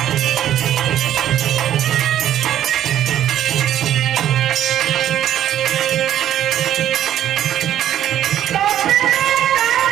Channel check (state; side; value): quieter; left; 11.3 dB